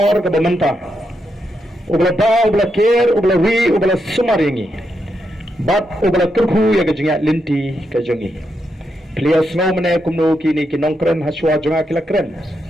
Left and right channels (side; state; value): both; normal; correlation 0.83